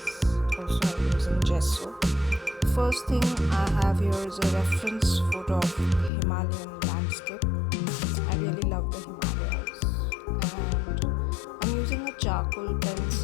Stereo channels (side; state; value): right; drops out; at 6.1 s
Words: Also I'm using gesso. First thing I have here is a reference photo of Himalayan landscape. I really love the Himalayas. And I'm using a charcoal